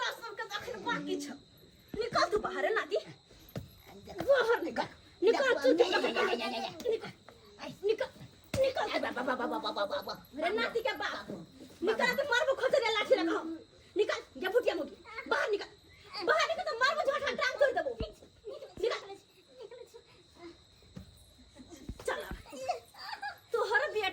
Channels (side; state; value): both; identical; correlation 1.00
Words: सबके अखन बाकी छ। निकल तू बाहर नाती, बाहर निकल तू निकल रे नाती के बाप निकल तो मारबो खोजरे लाठी लगाओ। निकल जा फुटिया मोगी बाहर निकल तो मारबो झोटा टांग तोड़ देबो। निकल चल तोहर